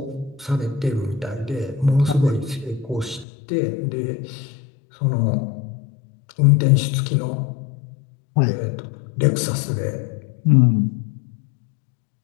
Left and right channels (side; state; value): right; drops out; at 3.2 s